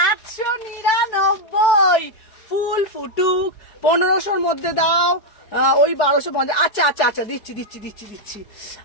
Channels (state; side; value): late; right; 4.6 ms